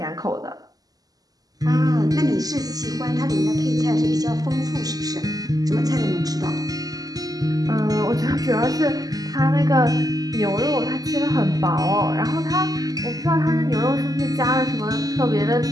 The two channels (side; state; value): left; late; 0.18 ms